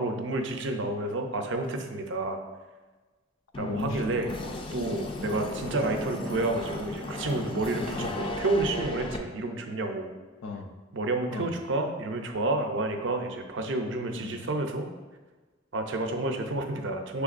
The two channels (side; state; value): both; normal; correlation 0.25